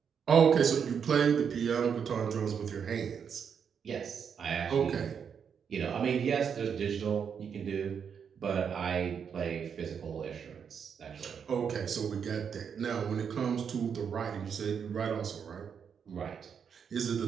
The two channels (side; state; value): left; quieter; 7.1 dB